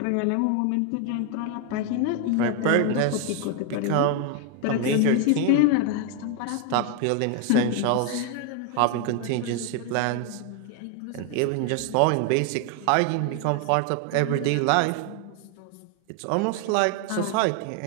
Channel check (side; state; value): both; different; correlation 0.01